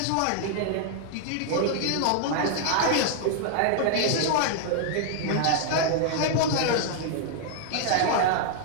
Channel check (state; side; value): different; both; correlation 0.00